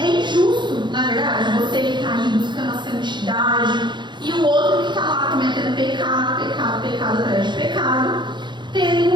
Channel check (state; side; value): late; left; 0.22 ms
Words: injusto, na verdade, você que está aí buscando a santidade e o outro que está lá cometendo pecado atrás de pecado, terem